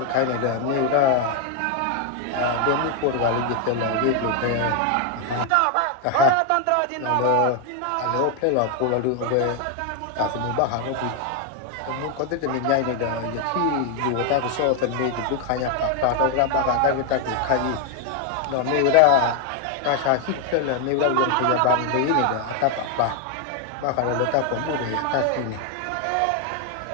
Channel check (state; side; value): different; both; correlation 0.01